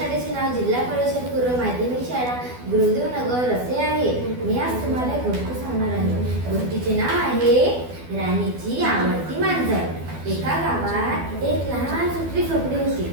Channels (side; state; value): left; late; 12 ms